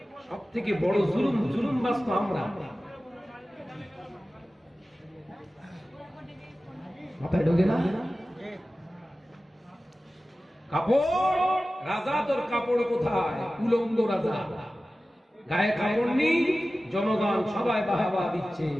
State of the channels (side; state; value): both; normal; correlation 0.96